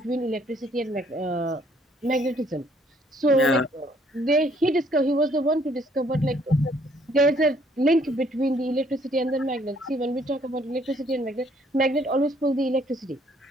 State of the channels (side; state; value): both; normal; correlation 0.64